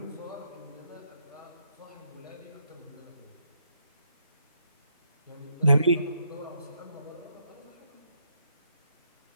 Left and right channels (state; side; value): inverted; both; correlation -0.75